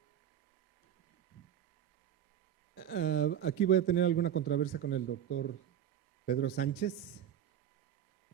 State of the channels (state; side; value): quieter; left; 10.0 dB